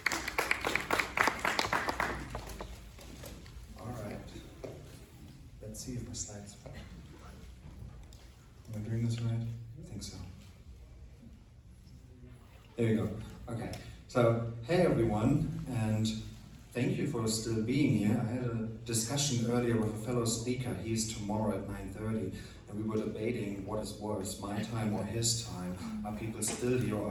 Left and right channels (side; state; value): both; identical; correlation 1.00